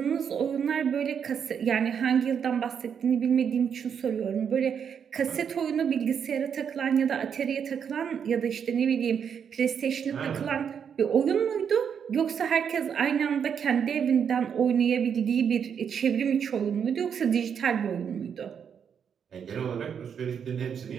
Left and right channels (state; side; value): quieter; left; 7.5 dB